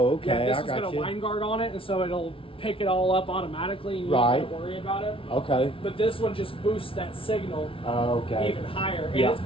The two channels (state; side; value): late; right; 0.26 ms